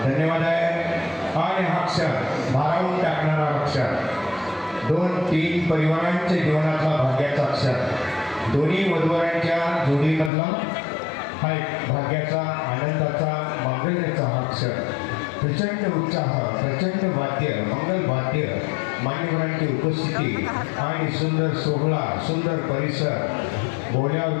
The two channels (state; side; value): drops out; right; at 10.3 s